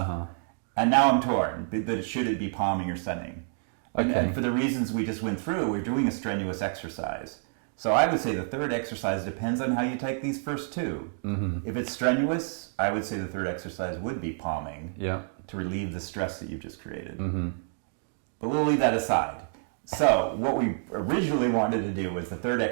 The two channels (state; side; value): silent; left; 59 dB below the other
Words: And now I'm torn, that should it be palming or sunning? And for the reasons we just went through, we're doing a strenuous exercise. So I would say the third exercise depends on how you take these first two. If it's strenuous, I would say the third exercise would be palming to relieve the stress that you've just created. But we'll leave that aside. So what we originally wanted to do was the third